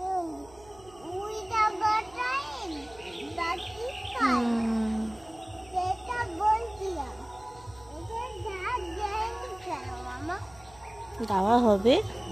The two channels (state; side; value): noise; right; hum, 24 dB below the sound